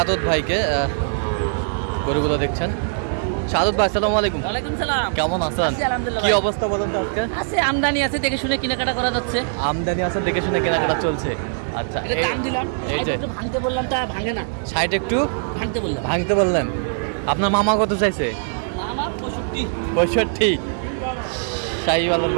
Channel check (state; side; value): silent; left; digital silence